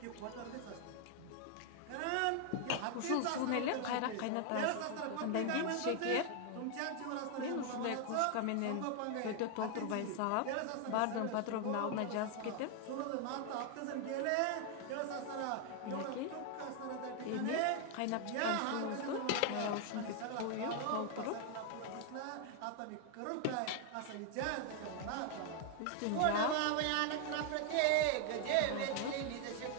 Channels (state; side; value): different; both; correlation 0.00